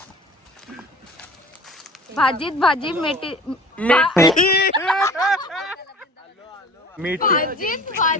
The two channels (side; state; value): both; normal; correlation 0.43